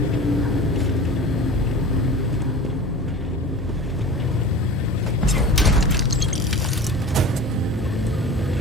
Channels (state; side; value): normal; both; correlation 0.35